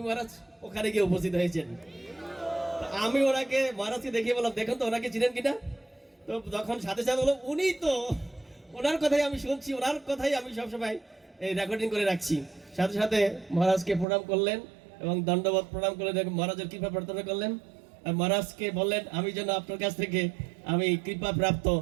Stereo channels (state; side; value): drops out; left; at 14.1 s